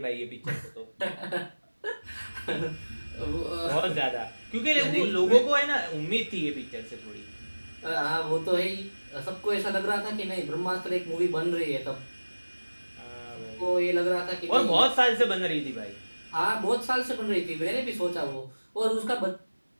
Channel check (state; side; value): inverted; both; correlation -1.00